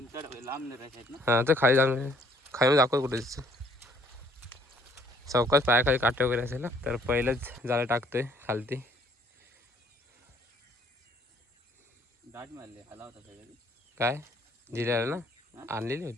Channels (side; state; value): both; normal; correlation 0.62